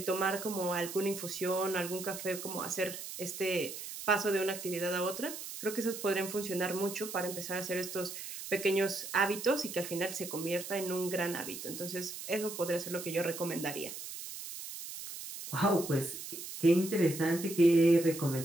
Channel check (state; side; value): noise; right; hiss, 9 dB below the sound